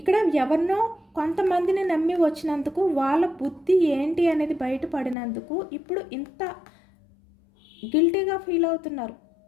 ఎవరినో కొంతమందిని నమ్మి వచ్చినందుకు వాళ్ళ బుద్ధి ఏంటి అనేది బయటపడినందుకు ఇప్పుడు ఇంత గిల్టీగా ఫీల్ అవుతున్నారు.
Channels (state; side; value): drops out; right; at 5.2 s